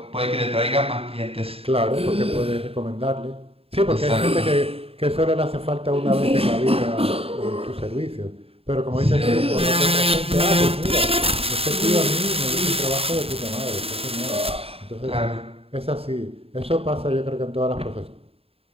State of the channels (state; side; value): late; left; 0.28 ms